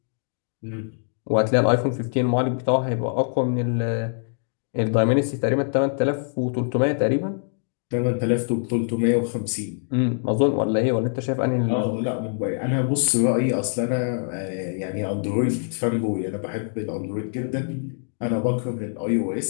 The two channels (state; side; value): silent; right; digital silence